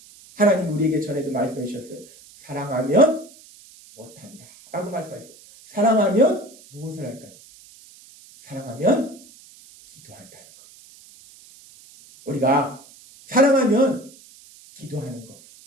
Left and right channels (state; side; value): noise; right; hiss, 23 dB below the sound